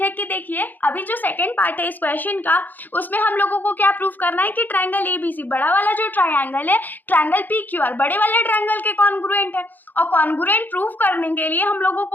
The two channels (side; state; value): right; late; 0.086 ms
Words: है कि देखिए अभी जो सेकंड पार्ट है इस क्वेश्चन का, उसमें हम लोगों को क्या प्रूव करना है कि ट्रायंगल ABC, बड़ा वाला जो ट्रायंगल है ट्रायंगल PQR, बड़े वाले ट्रायंगल के कॉन्ग्रुएंट है। और कॉन्ग्रुएंट प्रूव करने के लिए हम लोगों